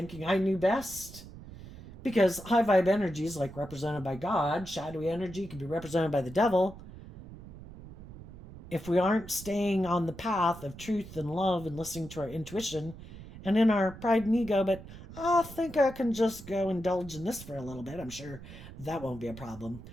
I knew best? Because high vibe energy is like represented by God. Shadowy energy can be represented by the devil. If we aren't staying on the path of truth and love and listening to our intuition and in our pride and ego, but I think I can just go indulge in this for a little bit. I'm sure that won't be a problem.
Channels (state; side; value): noise; right; rumble, 15 dB below the sound